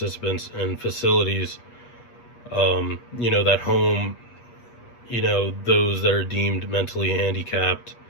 in facilities, that home, those that are deemed mentally handicapped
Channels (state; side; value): late; right; 8.3 ms